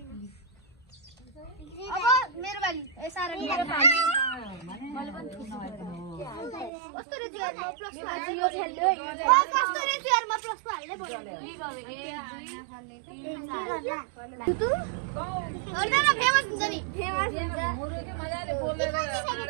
अब मेरो बाली ए सारा मेरो बाली मैले पनि कस्तो रे जियारमा प्लस हाल्ने खेल्यो कस्तो रे जियारमा प्लस हाल्ने भन्यो तु अन्डा फेमस हुन्छ नि फेमस हुन्छ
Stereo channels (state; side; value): drops out; left; at 6.7 s